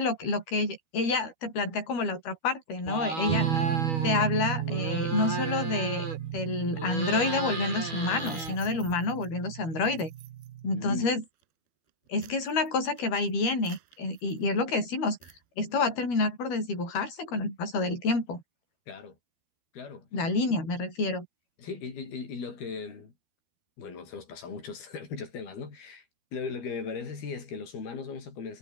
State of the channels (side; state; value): right; late; 12 ms